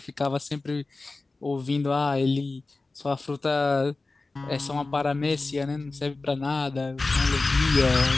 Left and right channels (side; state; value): right; quieter; 3.4 dB